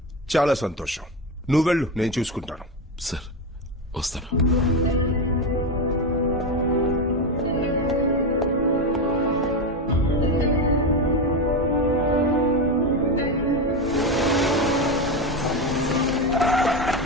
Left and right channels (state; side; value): normal; both; correlation 0.14